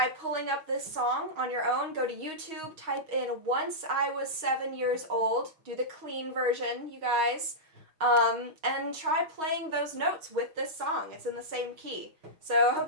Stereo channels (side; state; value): left; late; 6.3 ms